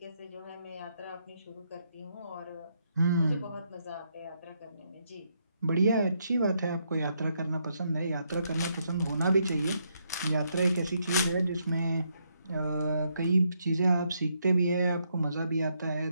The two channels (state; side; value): inverted; both; correlation -0.77